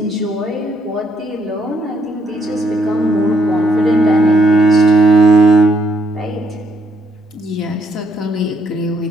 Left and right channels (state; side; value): normal; both; correlation 0.72